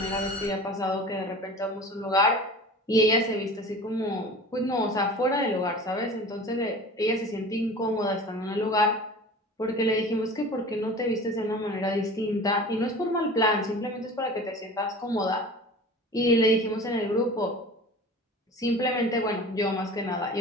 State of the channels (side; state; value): both; normal; correlation 0.38